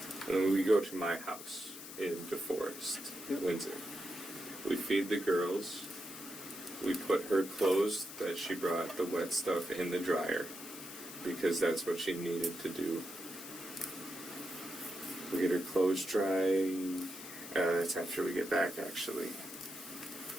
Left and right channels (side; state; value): left; noise; hiss, 12 dB below the sound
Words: And then we go to my house in DeForest, Windsor. We feed the girls. We put her clothes that she brought, the wet stuff, in the dryer, because that's what she needed to do. We get her clothes dry. That's after we get back, actually.